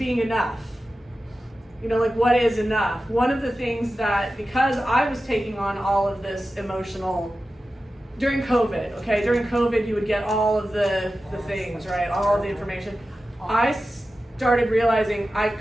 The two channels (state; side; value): normal; both; correlation 0.93